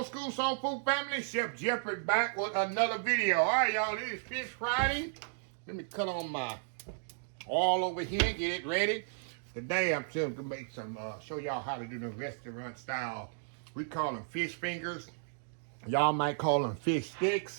school soul food family. Chef Jeffrey back with another video. All right, y'all, this is Fish Friday. Let me cut on my oil over here, get it ready. Today, I'm going to make some, show y'all how to do the restaurant style. We call them fish fingers. Y'all might call them fish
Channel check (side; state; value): left; silent; digital silence